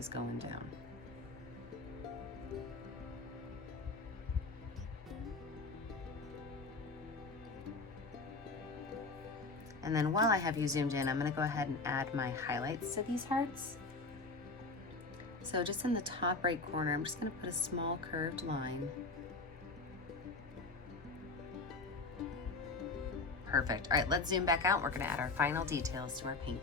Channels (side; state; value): right; quieter; 3.6 dB